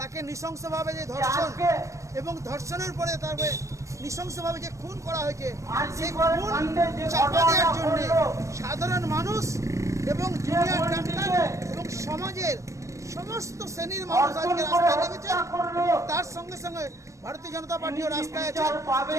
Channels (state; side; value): late; left; 0.15 ms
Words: নৃশংসভাবে যে ধর্ষণ এবং ধর্ষণের পরে তারপরে নৃশংসভাবে যে খুন করা হয়েছে, সেই খুন চাপা দেওয়ার জন্য সাধারণ মানুষ এবং জুনিয়র ডাক্তার এবং সমাজের সমস্ত শ্রেণীর মানুষ আজকে রাস্তায় নেমেছে। তার সঙ্গে সঙ্গে ভারতীয় জনতা পার্টিও রাস্তায় আছে।